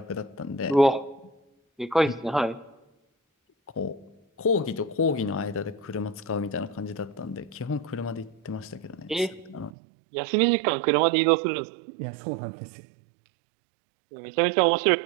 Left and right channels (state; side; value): drops out; left; at 9.7 s